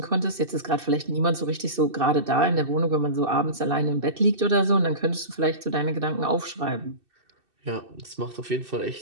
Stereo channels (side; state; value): left; late; 2.6 ms